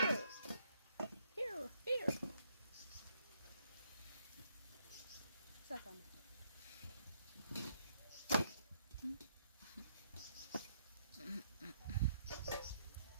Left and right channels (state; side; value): inverted; both; correlation -0.72